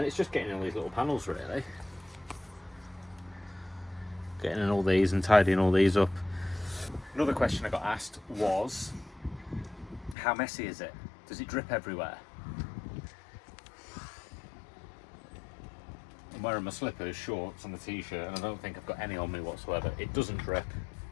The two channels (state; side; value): drops out; right; at 10.2 s